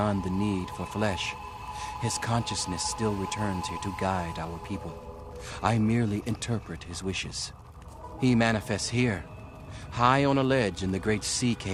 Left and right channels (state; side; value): identical; both; correlation 1.00